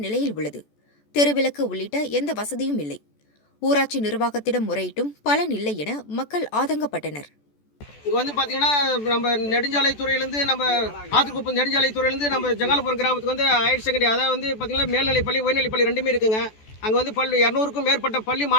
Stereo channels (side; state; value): right; late; 14 ms